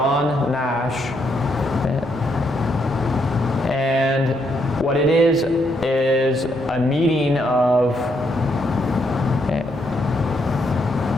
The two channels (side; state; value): both; normal; correlation 0.76